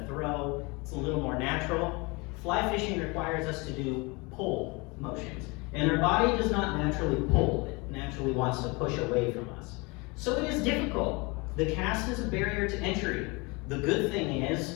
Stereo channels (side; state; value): right; quieter; 27.1 dB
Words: throw. It's a little more natural. Fly fishing requires us to do pull motions, and our body does not naturally pull. It naturally wants to push away from us. So it is difficult. The cast is a barrier to entry. The good thing is,